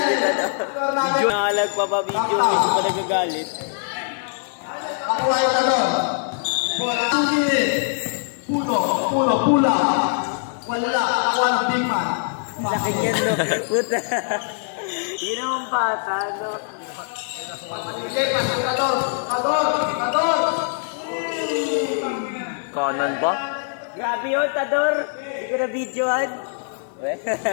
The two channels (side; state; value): right; silent; digital silence